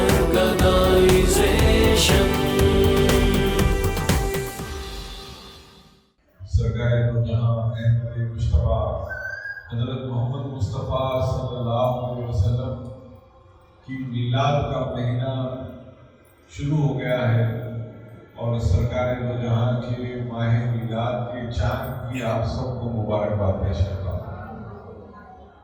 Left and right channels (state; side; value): identical; both; correlation 1.00